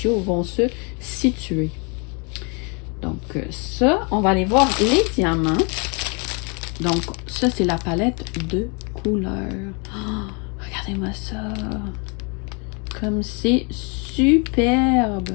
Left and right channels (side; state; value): right; quieter; 33.8 dB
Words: vont se situer. Donc, ça, on va aller voir les diamants. Donc, ça, c'est la palette de couleurs. Oh, regardez-moi ça. Comme c'est superbe.